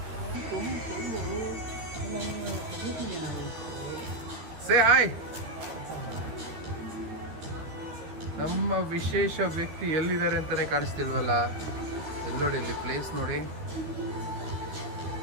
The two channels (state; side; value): late; left; 13 ms